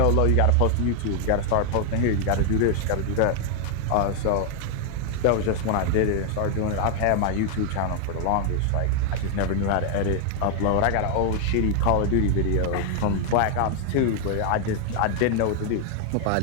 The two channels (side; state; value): both; different; correlation 0.00